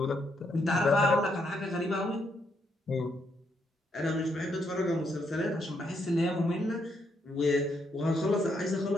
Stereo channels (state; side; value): normal; both; correlation 0.76